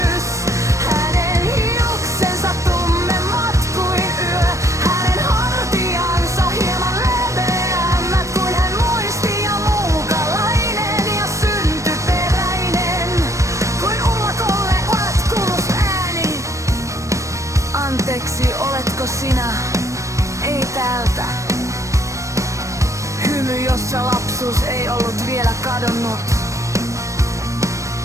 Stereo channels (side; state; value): left; late; 0.15 ms